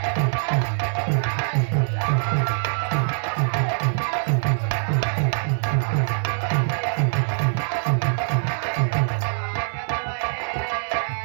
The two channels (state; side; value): silent; left; 63 dB below the other